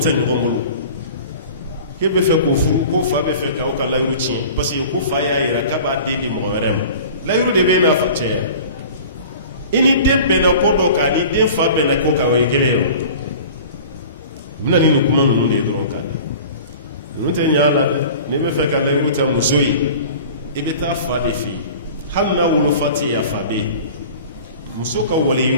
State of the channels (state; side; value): inverted; both; correlation -0.41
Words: ɲɔgɔn bolo e bɛ fɛ k'o furu ko fa bɛ fɛ k'aw ka layiru tiɲɛ parce que ko fa y'a yira k'a b'a den di mɔgɔ wɛrɛ ma layiru de bɛ n'a fa cɛya i ni den bɛnna ko dɔ kan ni den fa bɛnna ko kan o ye kelen ye o bɛna ni nin kuma ninnu de ye dɔrɔn kan ninnu tɛ ɲɛ a la dɛ n'i bɛ fɛ ka layiru ta muso ye i bɛ taa fa de fɛ yen hali n'a wolofa tɛ yen a fa bɛ yen muso ka